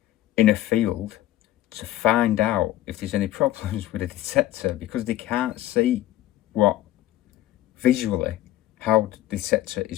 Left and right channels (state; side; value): quieter; right; 14.2 dB